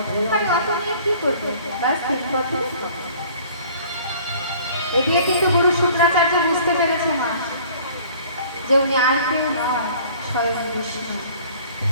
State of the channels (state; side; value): inverted; both; correlation -0.51